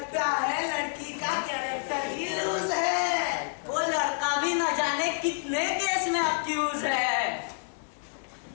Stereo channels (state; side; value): silent; right; digital silence